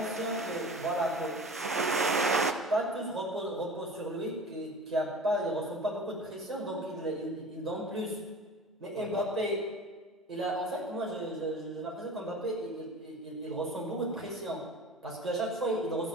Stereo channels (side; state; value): both; normal; correlation 0.38